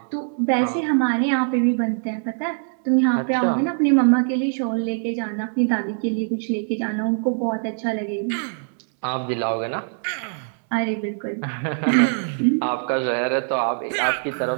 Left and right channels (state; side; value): silent; left; 63 dB below the other